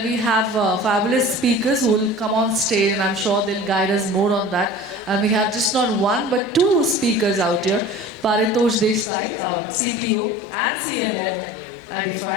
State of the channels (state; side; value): drops out; right; at 9.1 s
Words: we have fabulous speakers who will come on stage, and I'm sure they'll guide us more on that. And we have just not one, but two speakers out here. Paritosh Desai, CPO and CMO, Idify,